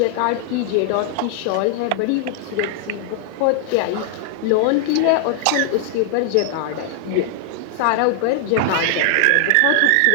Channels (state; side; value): different; both; correlation 0.00